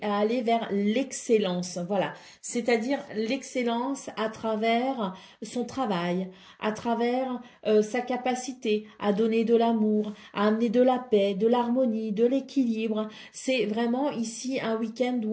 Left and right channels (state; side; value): identical; both; correlation 1.00